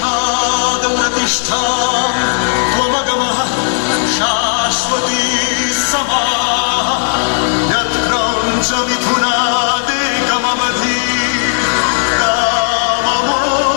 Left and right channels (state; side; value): silent; right; digital silence